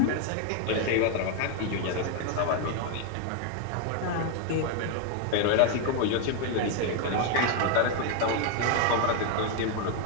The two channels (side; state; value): both; different; correlation 0.01